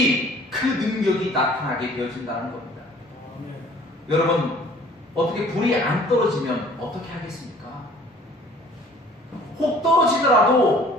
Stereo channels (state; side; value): normal; both; correlation 0.53